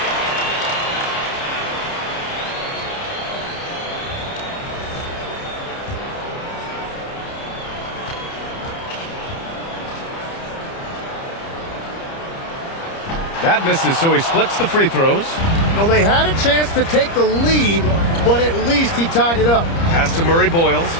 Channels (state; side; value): late; right; 30 ms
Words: That misses, so he splits the free throws. Well, they had a chance to take the lead, but at least he tied it up. Pass to Murray Boyles.